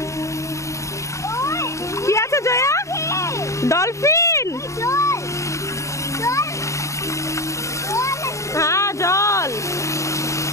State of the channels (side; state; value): right; late; 0.15 ms